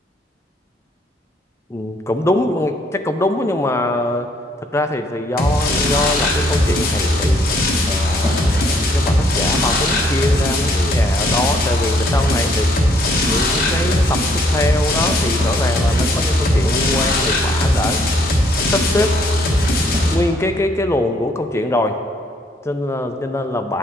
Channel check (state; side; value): normal; both; correlation 0.66